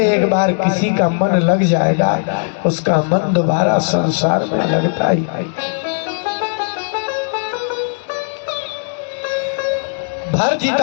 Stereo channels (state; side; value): silent; right; digital silence